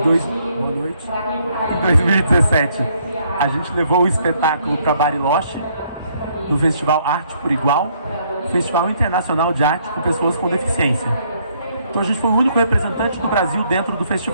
noite. Em 2017, a gente levou o espetáculo para Bariloche, no Festival Arte por Igual, Festival Internacional de Arte com Pessoas com Deficiência. Então a gente foi o único representante do Brasil dentro do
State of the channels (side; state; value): both; inverted; correlation -0.68